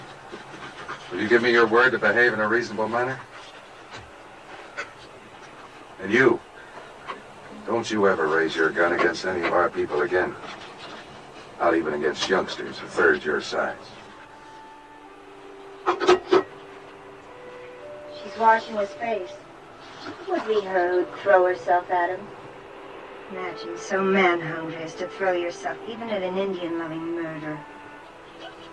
Will you give me your word to behave in a reasonable manner? And you, don't you ever raise your gun against any of our people again. Not even against youngsters a third your size. She's washing his face. It would be her who'd throw herself at him. Imagine so man-hungry as to throw yourself even at an Indian-loving murderer.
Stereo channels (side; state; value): both; identical; correlation 1.00